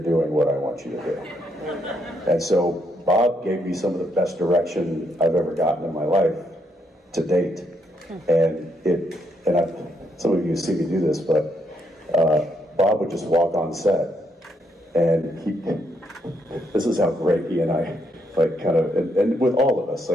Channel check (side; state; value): both; normal; correlation 0.76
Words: doing what I want you to do. And so Bob gave me some of the best direction I've ever gotten in my life to date. And some of you see me do this, but Bob would just walk on set, and this is how great he and I, like, kind of, and with all of us,